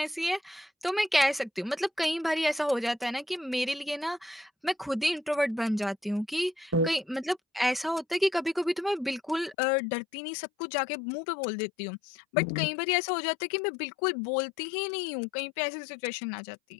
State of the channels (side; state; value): right; drops out; at 9.6 s